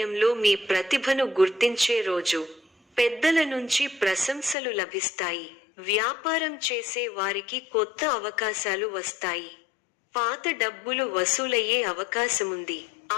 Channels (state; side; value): drops out; right; at 4.5 s